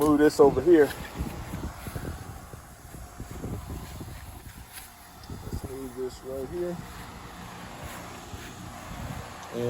glue this over here. Let's move this right here.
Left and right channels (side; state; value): both; identical; correlation 1.00